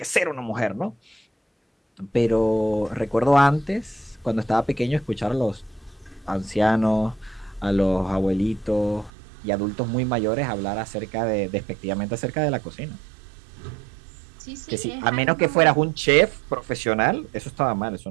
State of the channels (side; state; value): left; drops out; at 9.1 s